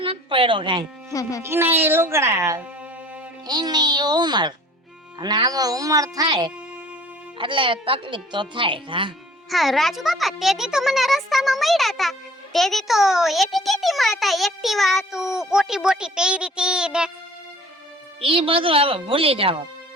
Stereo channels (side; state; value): both; normal; correlation 0.50